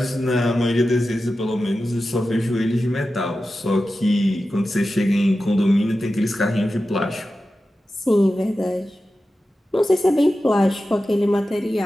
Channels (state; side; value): normal; both; correlation 0.93